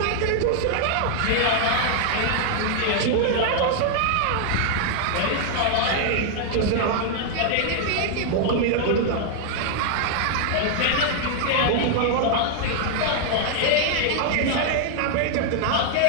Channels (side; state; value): both; different; correlation 0.00